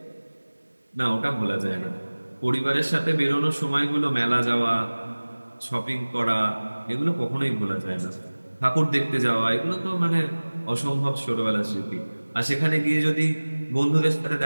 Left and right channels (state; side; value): inverted; both; correlation -1.00